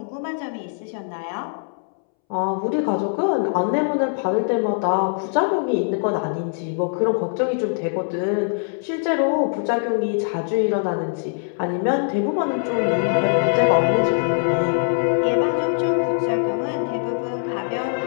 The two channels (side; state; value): right; silent; 64 dB below the other